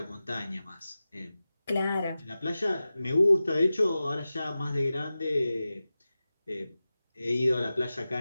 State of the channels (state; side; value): inverted; both; correlation -0.95